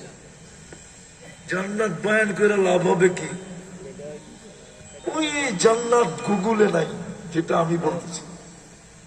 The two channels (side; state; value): both; identical; correlation 1.00